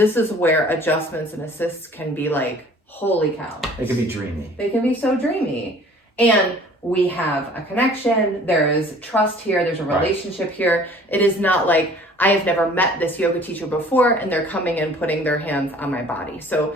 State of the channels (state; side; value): normal; both; correlation 0.51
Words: is where adjustments and assists can be like, holy cow. It can be dreamy. They can be so dreamy. And we have a connection, there is trust here, there's a relationship here. It is not like I have never met this yoga teacher before and they're coming and putting their hands on my body. So